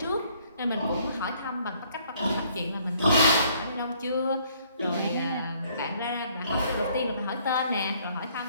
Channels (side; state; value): both; inverted; correlation -0.63